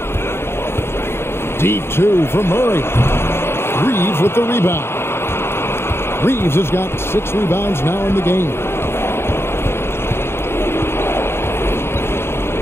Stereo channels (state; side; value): late; right; 0.12 ms